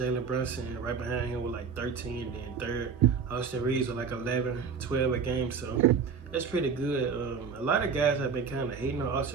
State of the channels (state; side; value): quieter; left; 5.9 dB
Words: Brunson right behind him with like 13, then third. Austin Reeves with like 11, 12 a game, so that's pretty good. A lot of guys have been kind of hating on